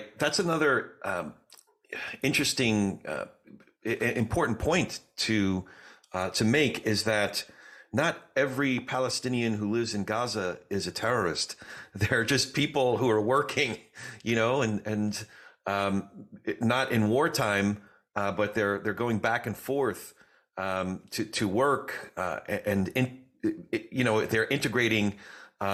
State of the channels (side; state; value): both; identical; correlation 1.00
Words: That's another interesting, important point to make, is that not every Palestinian who lives in Gaza is a terrorist. They're just people who are working, and not in wartime, but they're going back and forth to work, they're integrating